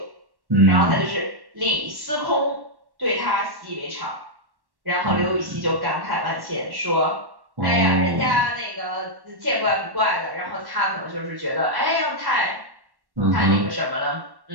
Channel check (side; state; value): left; late; 1.1 ms